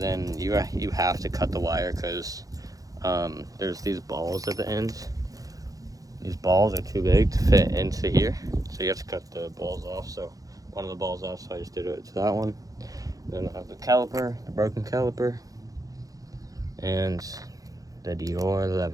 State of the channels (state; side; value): late; left; 0.17 ms